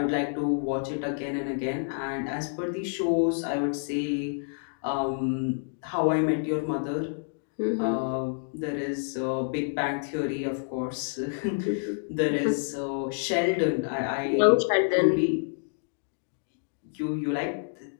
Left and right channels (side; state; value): right; silent; digital silence